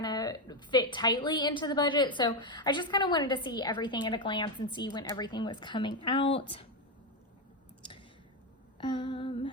fit tightly into the budget. So I just kind of wanted to see everything at a glance and see when everything was coming out.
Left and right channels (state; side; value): normal; both; correlation 0.08